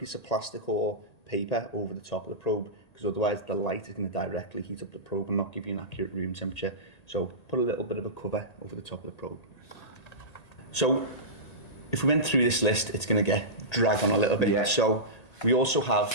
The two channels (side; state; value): right; late; 1.8 ms